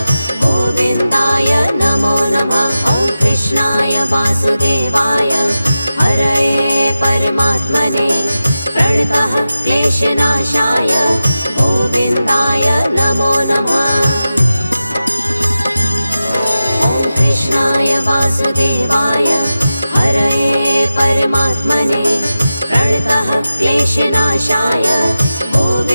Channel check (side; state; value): both; inverted; correlation -0.93